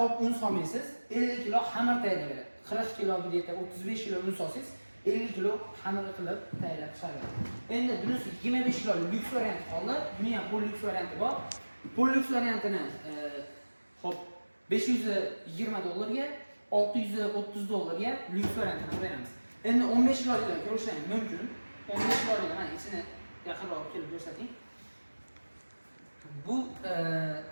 un solmaysiz, 50 kilo xamir tayyorlaydi. 40 kilo deydi, 35 kilo un solsangiz, 50 kilo xamir qilib tayyorlab chiqaradi. Endi bunisi 25 kilolik Lux varianti qoldi. Buni ham Polux varianti bor. Polux variantini xo'p $520 ga $630 ga Lux variantini beramiz. Endi 15 kilolikdan ko'rishingiz mumkin. 15 kilolik mana ichini yaqinroq kelib ko'rsating. Bu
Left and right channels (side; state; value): both; inverted; correlation -1.00